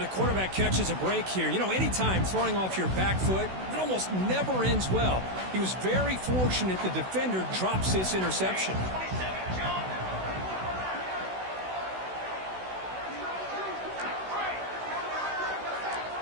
quarterback catches a break here. You know, anytime throwing off your back foot, it almost never ends well. He was very fortunate the defender drops this interception.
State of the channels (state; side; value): late; left; 16 ms